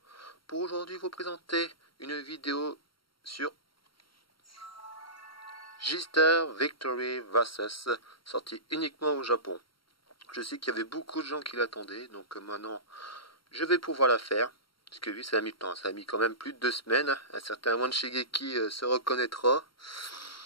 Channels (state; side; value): late; right; 0.73 ms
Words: pour aujourd'hui vous présenter une vidéo sur J-Star Victory Versus, sortie uniquement au Japon. Je sais qu'il y avait beaucoup de gens qui l'attendaient, donc maintenant je vais pouvoir la faire, parce que oui, ça a mis le temps, ça a mis quand même plus de 2 semaines, un certain Wan Shigeki se reconnaîtra.